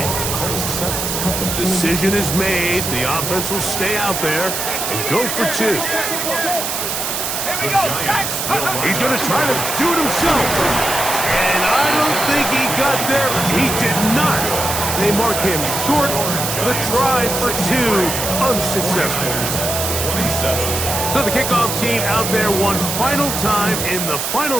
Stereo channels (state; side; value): noise; right; hiss, 2 dB below the sound